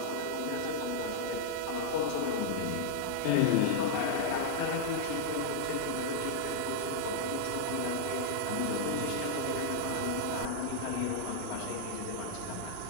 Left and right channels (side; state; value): both; different; correlation -0.01